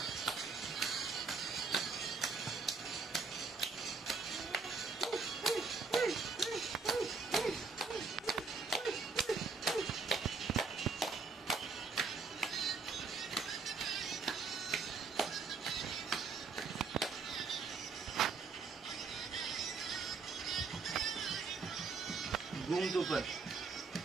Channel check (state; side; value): quieter; left; 4.7 dB